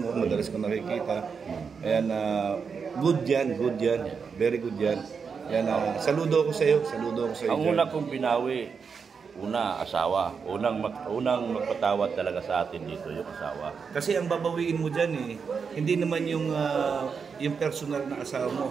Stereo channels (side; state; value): left; quieter; 5.8 dB